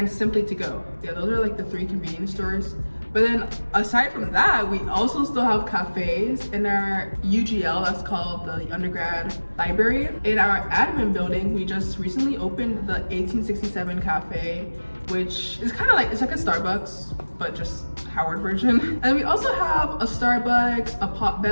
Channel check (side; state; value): both; inverted; correlation -1.00